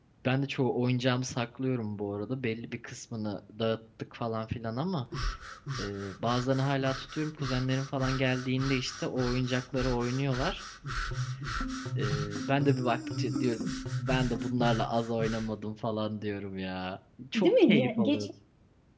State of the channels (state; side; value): identical; both; correlation 1.00